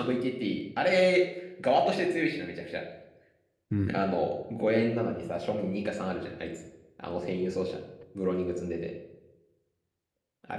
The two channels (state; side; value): identical; both; correlation 1.00